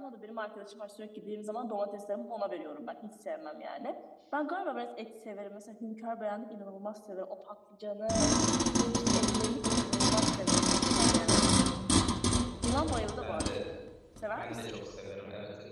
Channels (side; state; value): both; identical; correlation 1.00